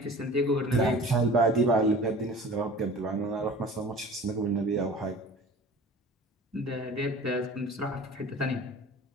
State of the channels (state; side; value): normal; both; correlation 0.42